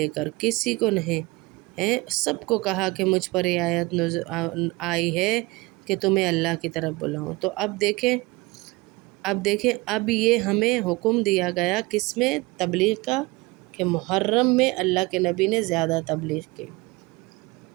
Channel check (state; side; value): quieter; left; 23.0 dB